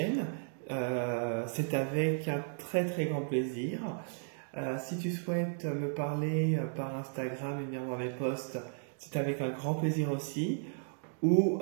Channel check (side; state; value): left; silent; digital silence